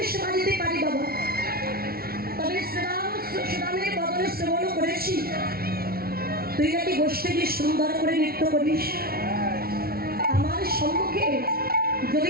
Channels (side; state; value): left; late; 0.44 ms